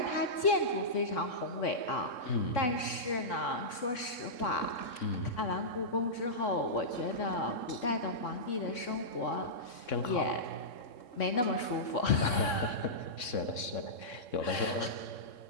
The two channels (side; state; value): right; late; 3.6 ms